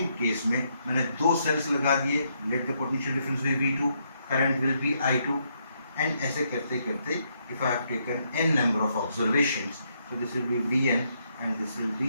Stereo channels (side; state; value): both; inverted; correlation -0.76